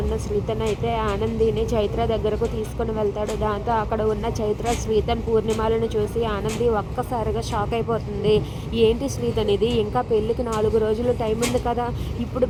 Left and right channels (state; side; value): identical; both; correlation 1.00